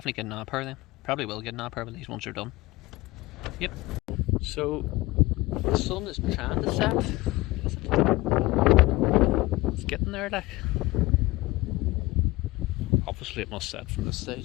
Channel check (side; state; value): right; quieter; 20.0 dB